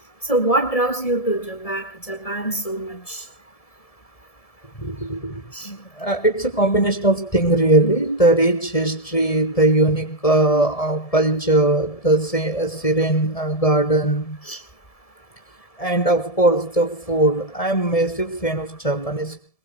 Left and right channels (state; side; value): late; right; 1.7 ms